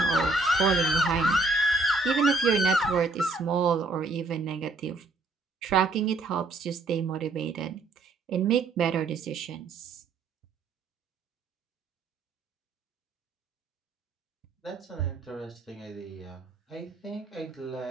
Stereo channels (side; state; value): left; quieter; 3.4 dB